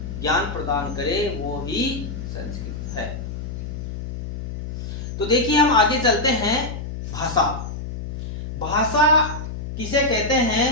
ज्ञान प्रदान करे, वो ही संस्कृत है। तो देखिए, हम आगे चलते हैं। भाषा, भाषा किसे कहते हैं?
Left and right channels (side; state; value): left; noise; hum, 7 dB below the sound